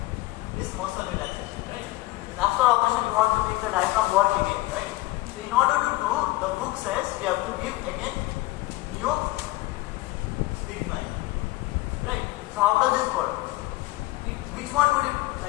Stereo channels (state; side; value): quieter; right; 19.0 dB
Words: this muscle relaxation, right? Because after operation, you want to make the diaphragm work again, right? So in order to do, the book says you have to give again Neostigmine, right? So how does this work? Which one would it